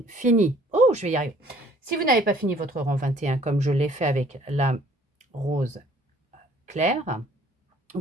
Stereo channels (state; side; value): normal; both; correlation 0.57